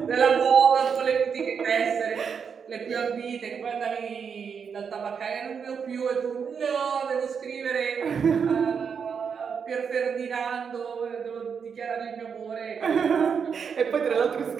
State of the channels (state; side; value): quieter; left; 6.5 dB